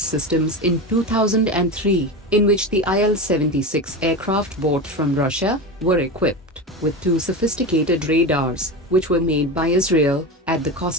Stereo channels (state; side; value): normal; both; correlation 0.22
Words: in 2003, in which the Il-76 aircraft bought from Russia were equipped with two sophisticated radars, which were made by Israel at the